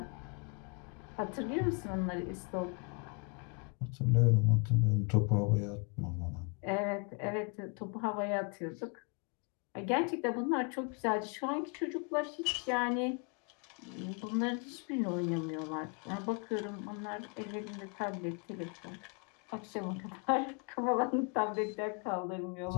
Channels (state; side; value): quieter; right; 34.4 dB